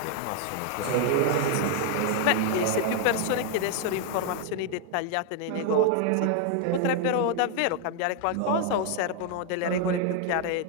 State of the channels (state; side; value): different; both; correlation 0.00